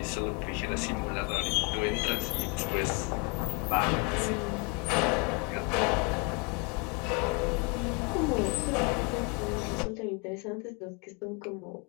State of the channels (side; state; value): right; quieter; 32.2 dB